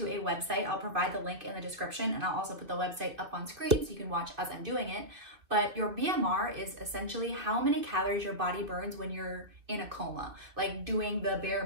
a website. I'll provide the link in the description, and I'll also put the website up on screen so you can watch as I'm doing it. But your BMR is essentially how many calories your body burns when you're in a coma, like doing the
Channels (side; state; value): left; late; 2.6 ms